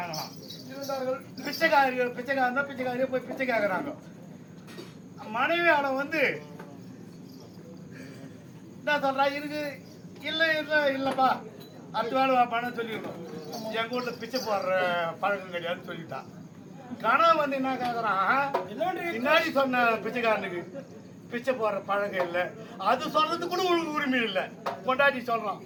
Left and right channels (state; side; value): identical; both; correlation 1.00